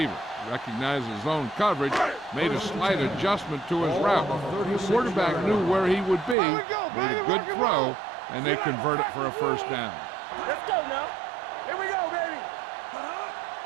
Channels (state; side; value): drops out; left; at 6.4 s